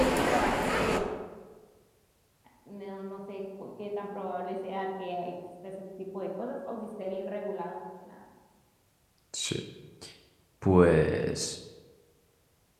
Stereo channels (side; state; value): both; identical; correlation 1.00